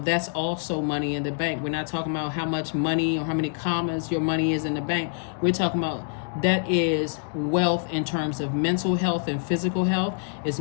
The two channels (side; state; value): right; silent; 61 dB below the other